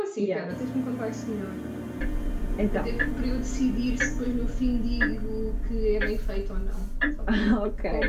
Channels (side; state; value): both; identical; correlation 1.00